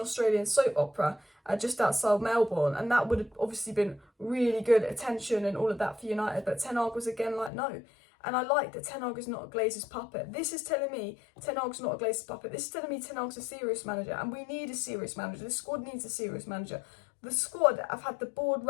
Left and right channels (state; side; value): drops out; right; at 7.5 s